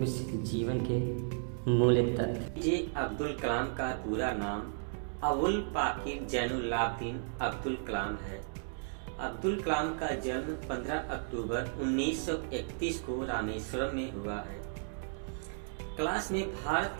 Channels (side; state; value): left; silent; digital silence